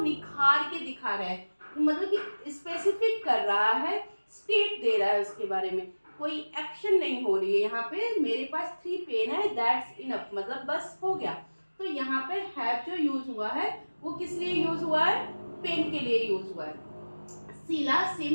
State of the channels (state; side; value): inverted; both; correlation -1.00